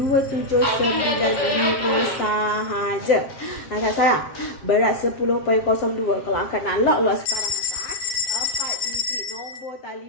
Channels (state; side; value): late; right; 7.4 ms